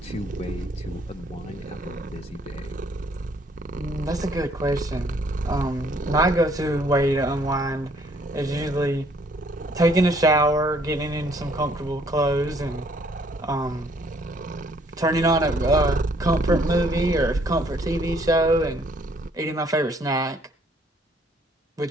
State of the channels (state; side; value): normal; both; correlation 0.64